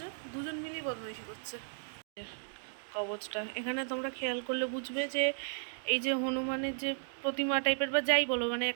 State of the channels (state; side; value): silent; left; digital silence